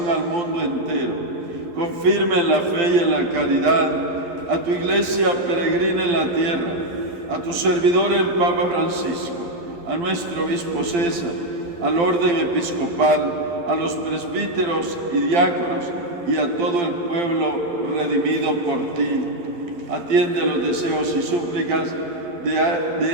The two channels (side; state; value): left; late; 12 ms